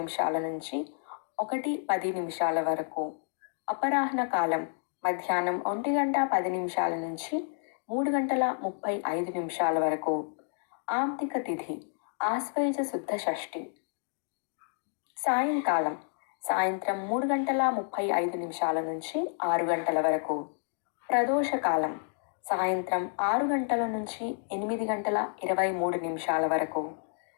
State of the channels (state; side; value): silent; right; 58 dB below the other